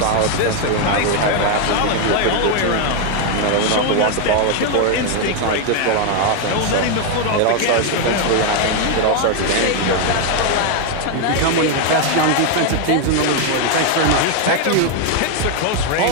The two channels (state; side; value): different; both; correlation 0.01